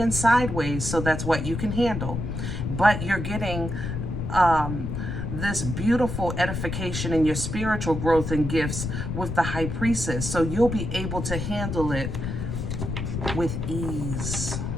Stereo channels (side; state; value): left; noise; rumble, 4 dB below the sound